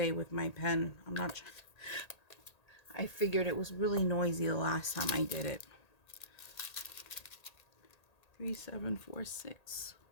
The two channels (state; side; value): late; right; 1.8 ms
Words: with my pen. I'm not. I figured it was really noisy the last time I did it. 3746.